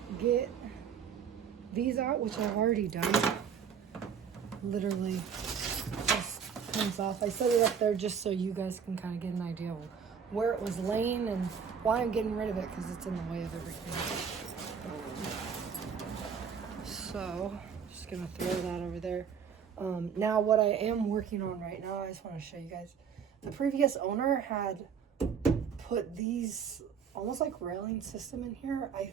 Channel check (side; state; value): left; quieter; 7.0 dB